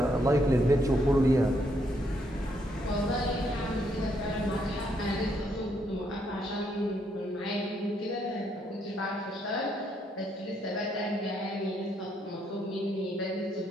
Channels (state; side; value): normal; both; correlation 0.74